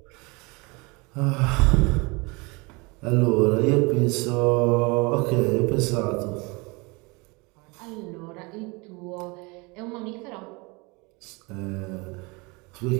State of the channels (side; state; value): left; quieter; 27.3 dB